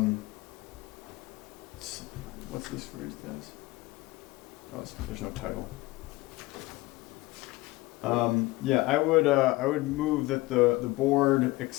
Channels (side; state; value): right; quieter; 20.3 dB